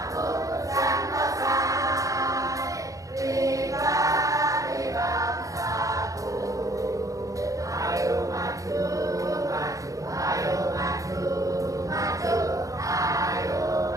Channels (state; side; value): late; left; 0.16 ms